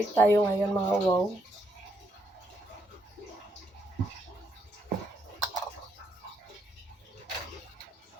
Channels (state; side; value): normal; both; correlation 0.76